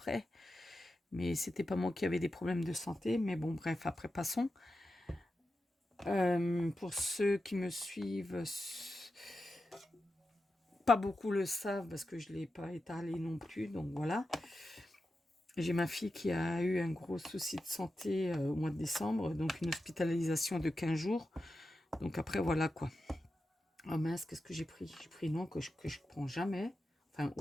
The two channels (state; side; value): normal; both; correlation 0.90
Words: Mais c'était pas moi qui avais des problèmes de santé. Mais bon, bref, après, passons. Pour ceux qui me suivent, pas beaucoup le savent parce que je ne l'ai pas étalé non plus. Donc voilà. J'ai ma fille qui a eu un gros souci de santé au mois de décembre. Donc une hospitalisation de 15 jours. Donc après, voilà quoi. Oh mince, qu'est-ce que j'ai pris? J'ai pris non que je prends jamais. Enfin,